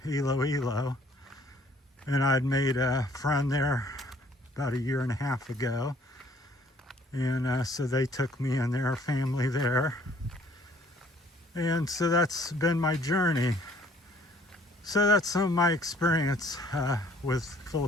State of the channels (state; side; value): normal; both; correlation 0.59